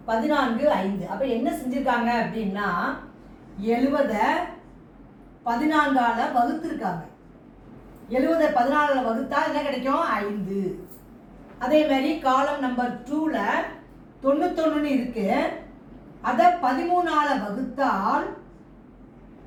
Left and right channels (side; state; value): both; identical; correlation 1.00